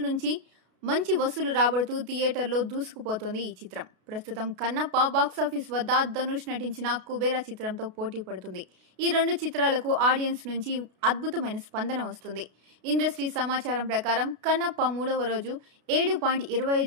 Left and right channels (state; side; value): late; left; 32 ms